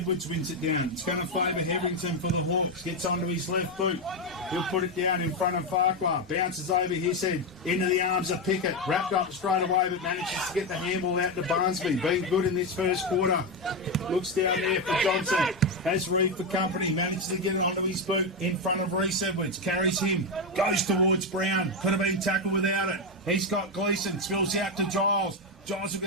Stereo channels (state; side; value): normal; both; correlation 0.09